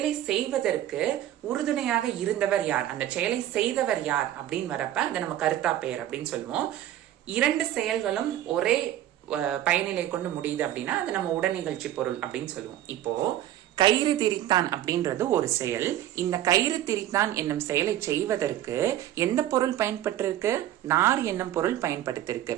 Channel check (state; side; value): quieter; left; 12.7 dB